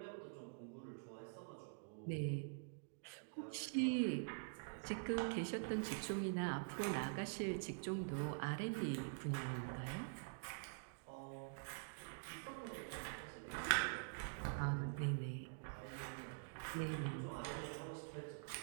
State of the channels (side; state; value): left; silent; digital silence